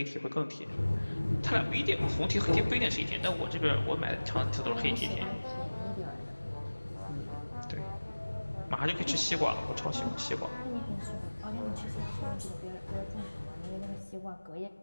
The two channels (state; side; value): inverted; both; correlation -1.00